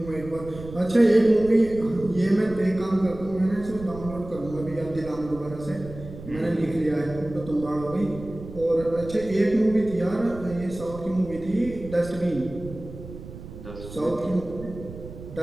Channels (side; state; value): right; noise; rumble, 14 dB below the sound